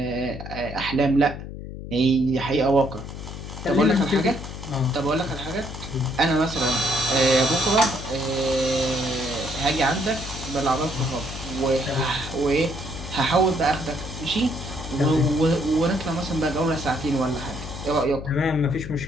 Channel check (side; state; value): left; noise; hum, 10 dB below the sound